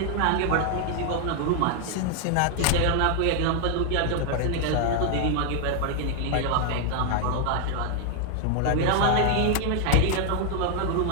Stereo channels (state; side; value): different; both; correlation 0.00